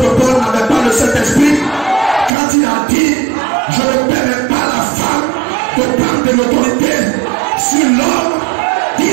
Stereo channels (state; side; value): drops out; left; at 2.3 s